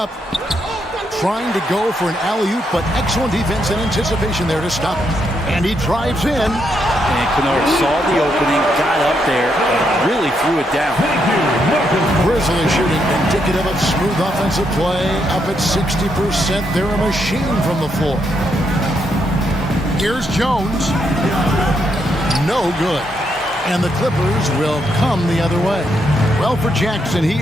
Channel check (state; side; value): normal; both; correlation 0.78